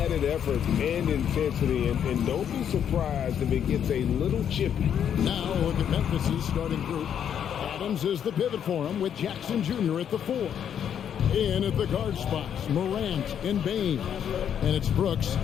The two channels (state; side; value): quieter; right; 8.8 dB